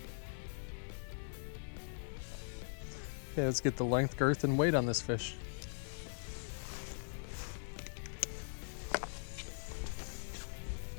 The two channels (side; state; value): right; silent; digital silence